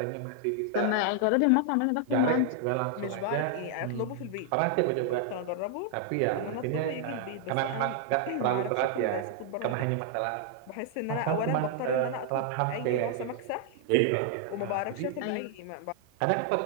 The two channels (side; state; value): both; different; correlation 0.00